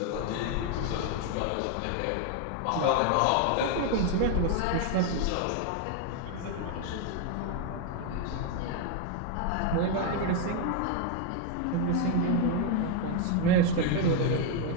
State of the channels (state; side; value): different; both; correlation 0.01